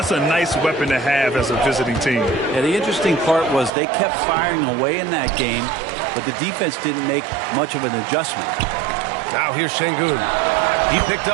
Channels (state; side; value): drops out; left; at 3.7 s